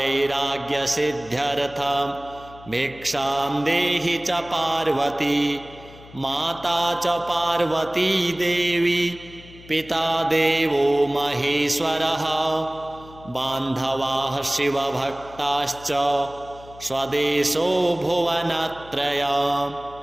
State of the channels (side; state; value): left; noise; hum, 20 dB below the sound